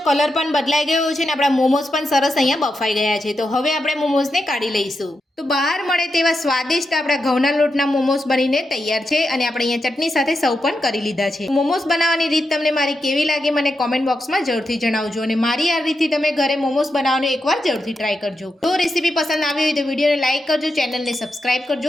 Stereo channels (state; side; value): normal; both; correlation 0.86